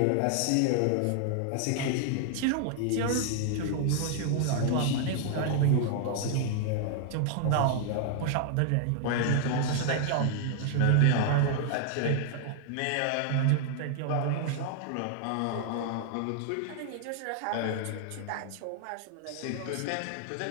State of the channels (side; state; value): both; different; correlation 0.00